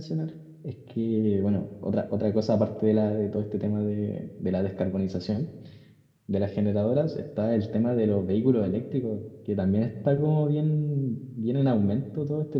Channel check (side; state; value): both; identical; correlation 1.00